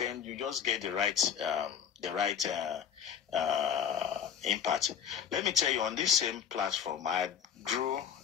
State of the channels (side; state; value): right; quieter; 8.0 dB